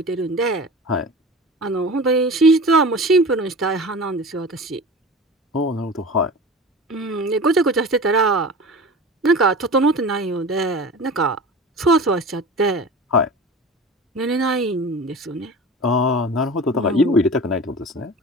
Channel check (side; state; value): both; normal; correlation 0.34